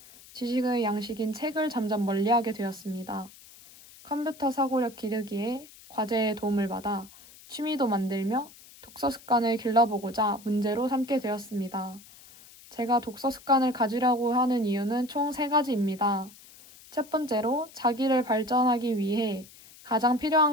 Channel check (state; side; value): noise; left; hiss, 21 dB below the sound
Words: 지식의 양식인 책을 점점 멀리하게 되었습니다. 컴퓨터 사고력 기르기에 과제에 도움을 받아 취미도 만들며 독서 습관을 길러보고자 문제로 삼게 되었습니다. 제가 독서 습관을 가지려고 하는 이유는 총 3가지입니다. 첫 번째로 자기를 발전하기 위해 가장